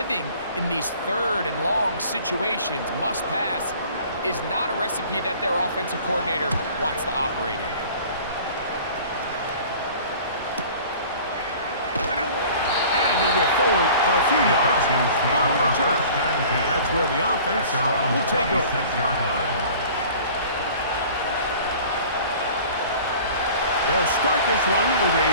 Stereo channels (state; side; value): inverted; both; correlation -0.46